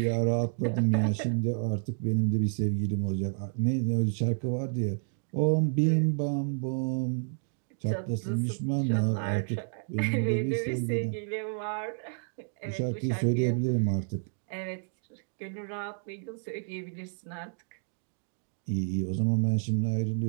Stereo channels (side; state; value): left; silent; digital silence